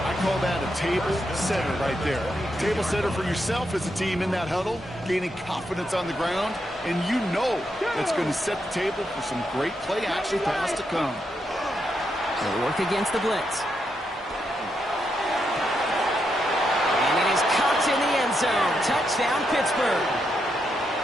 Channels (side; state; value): both; normal; correlation 0.82